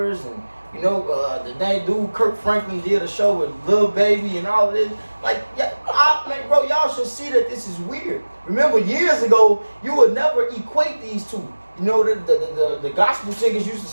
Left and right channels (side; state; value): both; inverted; correlation -1.00